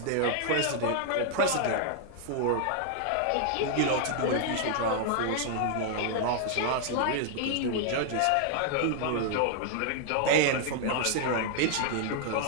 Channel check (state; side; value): different; both; correlation 0.00